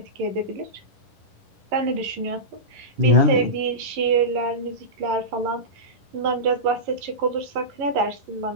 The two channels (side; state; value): left; late; 11 ms